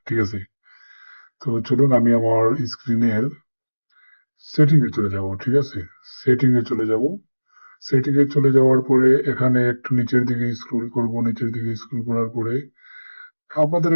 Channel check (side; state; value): both; inverted; correlation -1.00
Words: ঠিক আছে? তো চলুন আমি আমার স্ক্রিনের সেটিং এ চলে যাব। ঠিক আছে? সেটিং এ চলে যাব। সেটিং এ চলে যাওয়ার পরে এখানে একটু নিচের দিকে স্ক্রল করব। নিচের দিকে স্ক্রল করার পরে আপনাদের